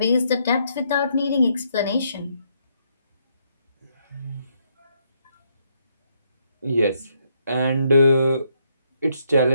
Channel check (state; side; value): inverted; both; correlation -0.74